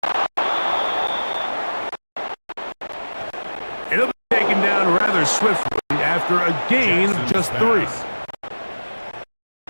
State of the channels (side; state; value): both; inverted; correlation -1.00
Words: It'll be taken down rather swiftly after a gain of just 3.